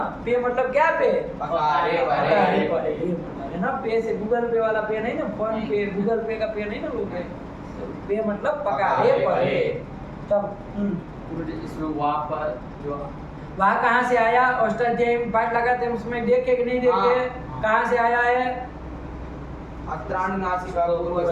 पे मतलब क्या? पे है ना। पे से गूगल पे वाला पे नहीं ना, फोन पे गूगल पे का पे नहीं ना लोग। पे मतलब पकारे पड़े। तब इसमें वहाँ कहाँ से आया? अष्टाध्यायी में पाठ लगाते हैं, उसमें देखे कि नहीं देखे? कहाँ से आया है? अत्राण नासिका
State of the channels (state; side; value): identical; both; correlation 1.00